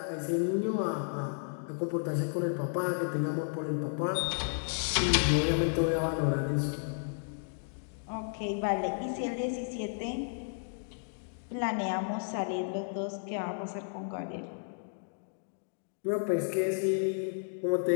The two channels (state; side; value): silent; right; digital silence